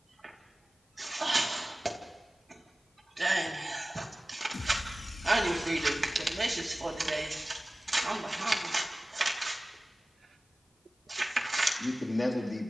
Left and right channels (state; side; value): normal; both; correlation 0.97